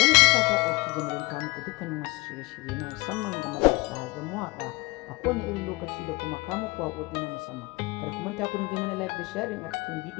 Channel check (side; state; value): right; quieter; 23.7 dB